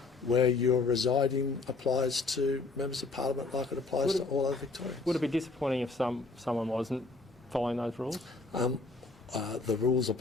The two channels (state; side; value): quieter; right; 3.6 dB